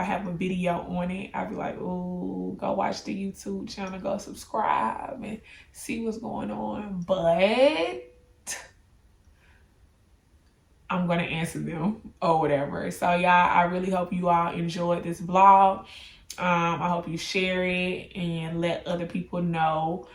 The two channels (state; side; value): identical; both; correlation 1.00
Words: have a video on it, I'd be like, ooh, go watch the YouTube channel, go subscribe and see what's going on. But I'm going to answer them or whatever. So, y'all, I really hope you all enjoyed this vlog. I hope you share it and let other people know